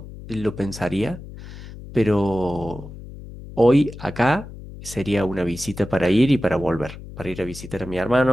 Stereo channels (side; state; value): left; noise; hum, 14 dB below the sound